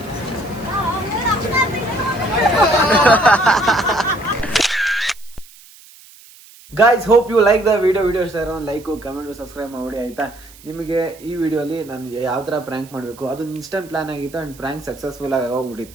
Guys, hope you like the video ಇಷ್ಟ ಇರೋ ಲೈಕು, ಕಮೆಂಟು, ಸಬ್ಸ್ಕ್ರೈಬ್ ಮಾಡಿ ಆಯಿತಾ. ನಿಮಗೆ ಈ ವಿಡಿಯೋಲಿ ನಾನು ಯಾವ ಥರ ಪ್ರ್ಯಾಂಕ್ ಮಾಡಬೇಕು ಅದೊಂದು ಇನ್ಸ್ಟೆಂಟ್ ಪ್ಲಾನ್ ಆಗಿತ್ತು ಆ್ಯಂಡ್ ಪ್ರ್ಯಾಂಕ್ ಸಕ್ಸಸ್ಫುಲ್ ಆಗಿ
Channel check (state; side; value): noise; right; hiss, 23 dB below the sound